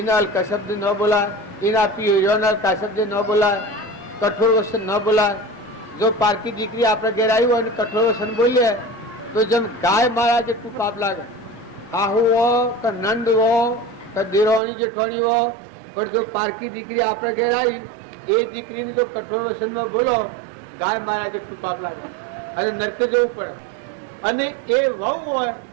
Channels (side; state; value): left; drops out; at 14.6 s